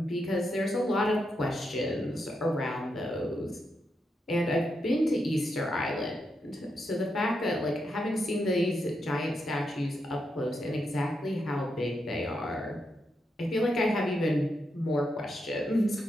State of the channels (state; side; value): normal; both; correlation 0.83